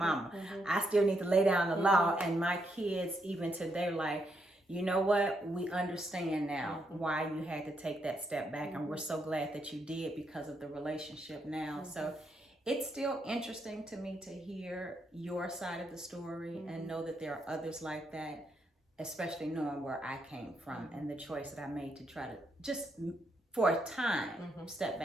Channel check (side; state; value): both; normal; correlation 0.78